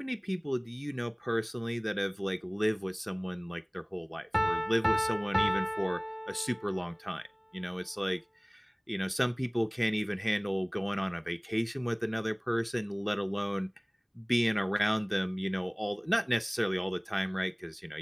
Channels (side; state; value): both; identical; correlation 1.00